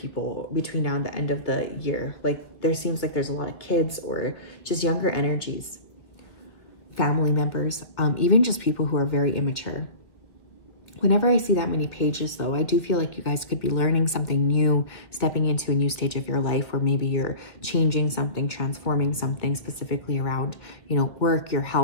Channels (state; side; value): late; right; 2.0 ms